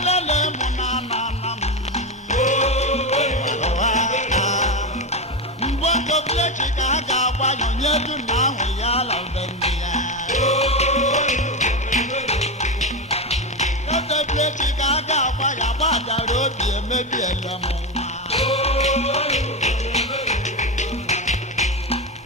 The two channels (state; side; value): normal; both; correlation 0.14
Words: munana. Mbongo blechi kaga wanyo nyedu na wiyala bendia. Kote blechi kaga waya wada robi emebi elamo.